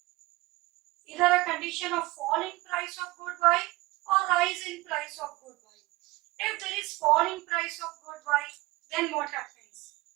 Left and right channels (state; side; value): quieter; left; 20.4 dB